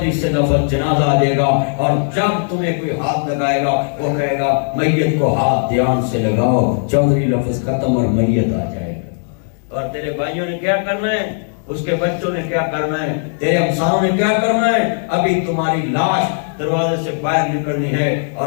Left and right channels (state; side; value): silent; right; digital silence